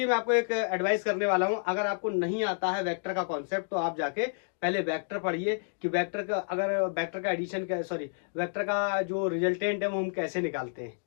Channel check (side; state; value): right; silent; digital silence